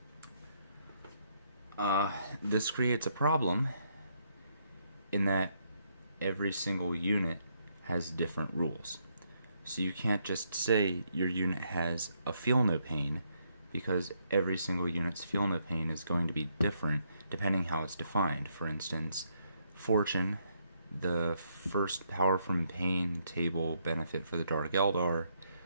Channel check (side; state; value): both; inverted; correlation -0.74